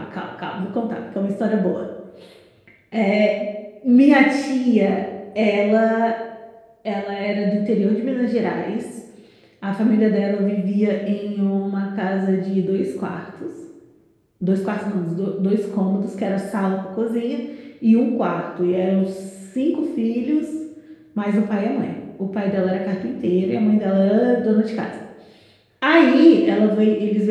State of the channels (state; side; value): identical; both; correlation 1.00